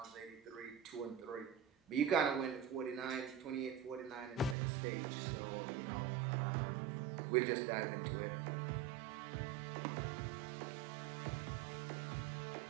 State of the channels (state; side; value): drops out; left; at 4.5 s